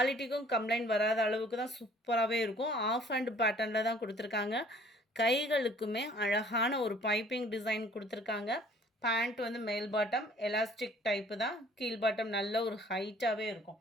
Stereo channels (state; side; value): normal; both; correlation 0.55